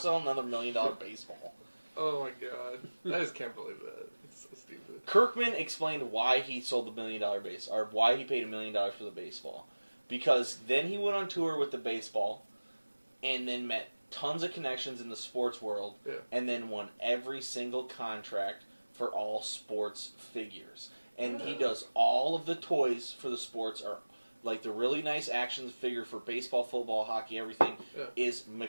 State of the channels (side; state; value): both; inverted; correlation -1.00